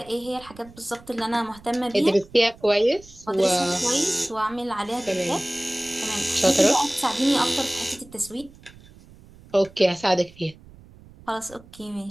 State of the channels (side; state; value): right; noise; rumble, 23 dB below the sound